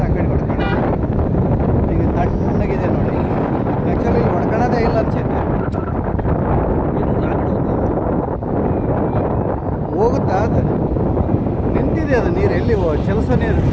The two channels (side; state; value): both; identical; correlation 1.00